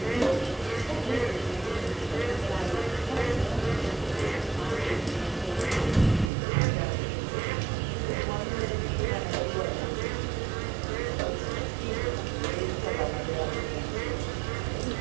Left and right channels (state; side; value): drops out; left; at 6.3 s